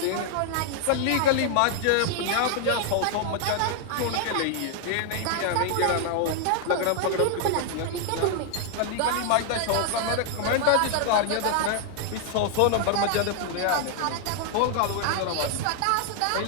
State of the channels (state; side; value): different; both; correlation 0.00